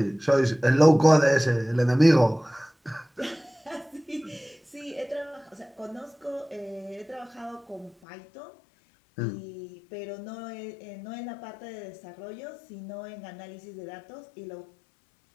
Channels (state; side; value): drops out; right; at 8.0 s